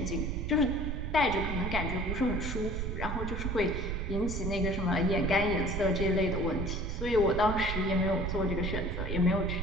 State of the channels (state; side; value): noise; right; rumble, 3 dB below the sound